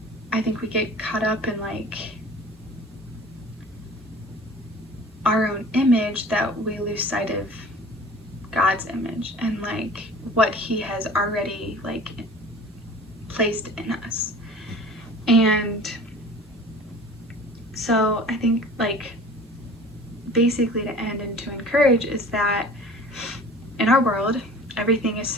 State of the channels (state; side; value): normal; both; correlation 0.43